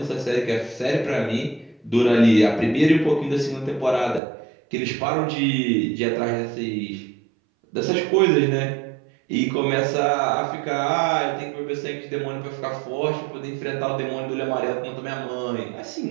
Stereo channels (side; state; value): left; drops out; at 4.2 s